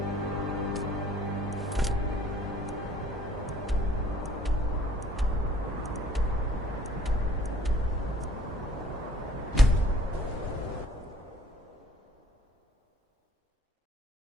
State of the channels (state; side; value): normal; both; correlation 0.56